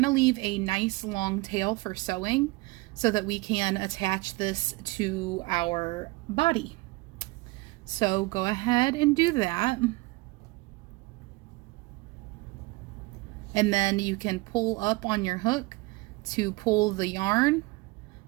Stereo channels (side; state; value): left; quieter; 23.1 dB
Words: to leave a nice long tail for sewing so that we can attach this to our body. So go ahead and do that. And then you can pull up on your hook to pull the yarn.